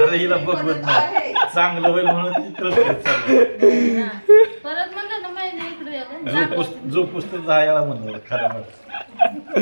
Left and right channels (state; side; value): inverted; both; correlation -1.00